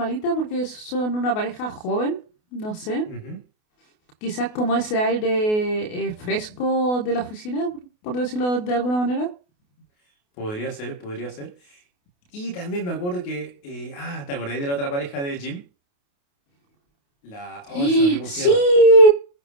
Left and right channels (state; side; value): late; right; 28 ms